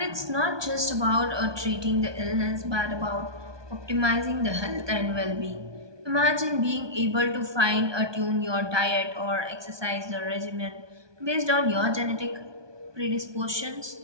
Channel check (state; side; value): late; left; 1.2 ms